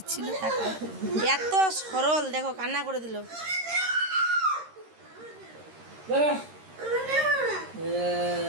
টাকা এত সরল দেখো কান্না করে দিল।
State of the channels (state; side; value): late; left; 13 ms